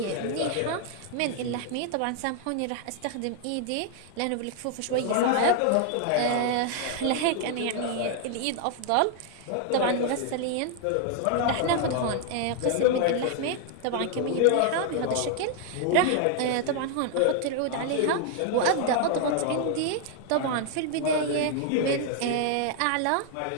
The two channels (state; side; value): different; both; correlation 0.00